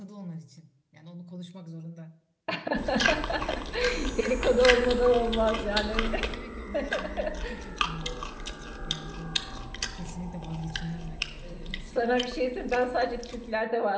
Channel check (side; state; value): both; identical; correlation 1.00